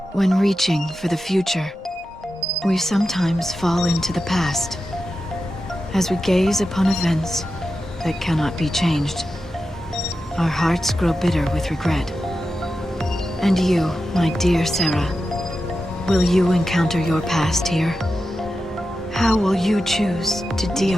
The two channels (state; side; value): normal; both; correlation 0.91